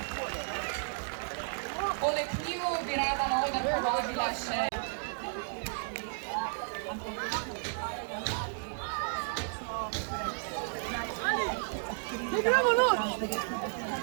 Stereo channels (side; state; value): left; silent; digital silence